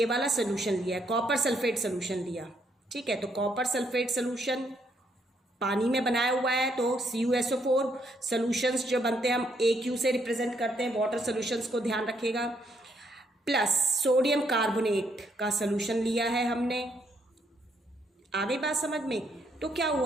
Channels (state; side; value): normal; both; correlation 0.73